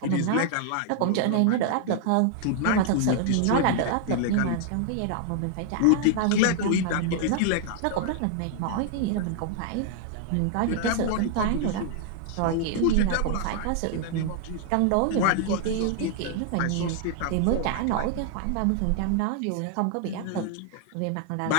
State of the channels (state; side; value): different; both; correlation -0.01